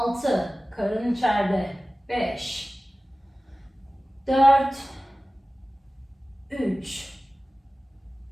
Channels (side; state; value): both; normal; correlation 0.96